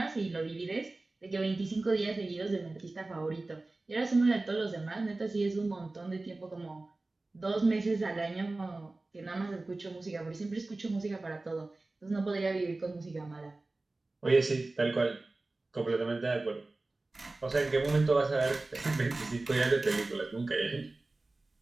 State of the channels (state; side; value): quieter; left; 3.1 dB